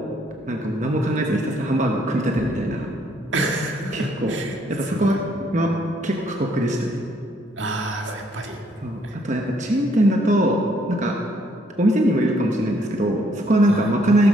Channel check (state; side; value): normal; both; correlation 0.68